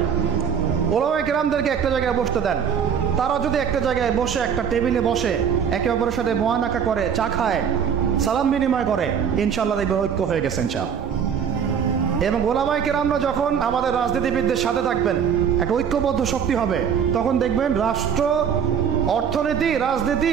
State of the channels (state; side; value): quieter; left; 7.4 dB